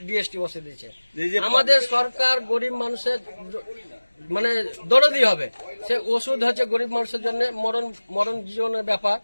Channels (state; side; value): inverted; both; correlation -1.00